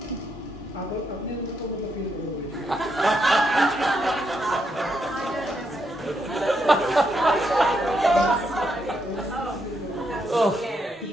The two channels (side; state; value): both; normal; correlation 0.79